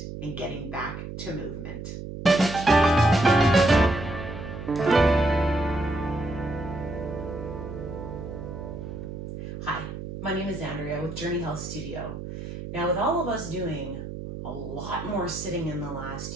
and getting back to movement. Hi, my name is Andrea with Journey Health Studio. Now, with all of us doing a lot more sitting in the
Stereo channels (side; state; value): right; noise; hum, 9 dB below the sound